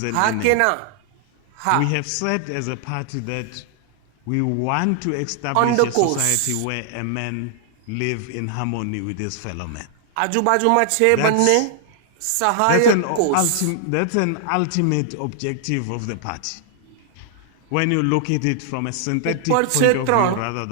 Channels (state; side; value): different; both; correlation 0.00